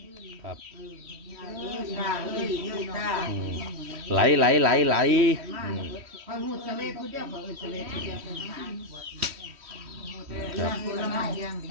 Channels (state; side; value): late; left; 3.1 ms